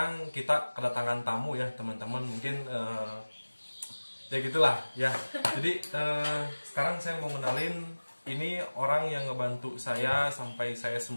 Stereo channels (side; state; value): both; inverted; correlation -1.00